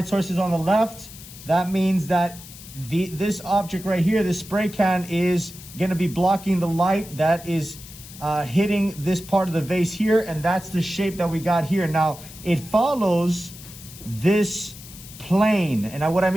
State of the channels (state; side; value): noise; left; hiss, 17 dB below the sound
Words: source is on the left. That means that this object right here, this spray can, is gonna be blocking the light that is hitting this part of the vase here, and that's the shape that we got here. Now, it follows this plane, and what I